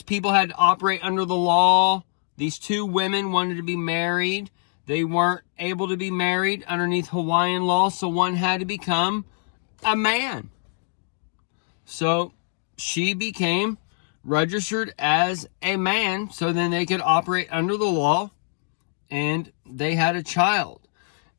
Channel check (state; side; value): silent; right; 63 dB below the other